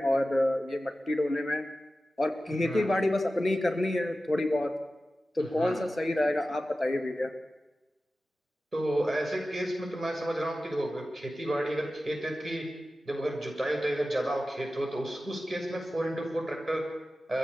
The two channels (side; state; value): both; normal; correlation 0.94